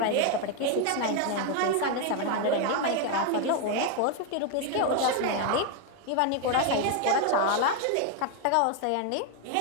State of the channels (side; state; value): both; different; correlation 0.01